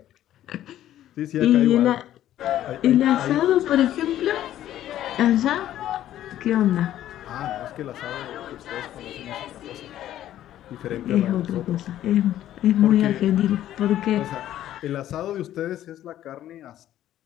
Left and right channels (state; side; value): quieter; right; 12.5 dB